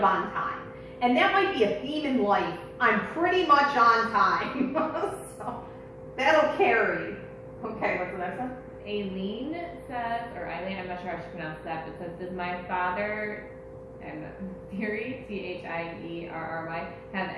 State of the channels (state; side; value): identical; both; correlation 1.00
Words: on time. And that might be a theme in life. I'm pretty much on time. So that'll carry. Okay, what's the next one? Aileen says, or Eileen, I'm not sure how she pronounced that, but says, does my father, Thierry, Thierry, have